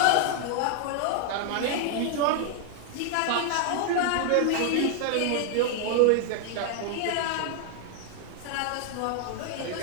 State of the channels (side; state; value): both; different; correlation 0.00